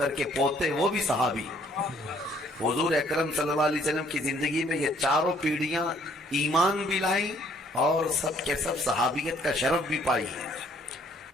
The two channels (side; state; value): both; normal; correlation 0.63